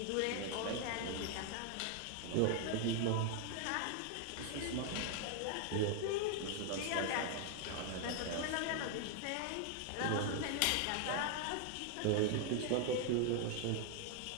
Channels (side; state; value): both; different; correlation 0.00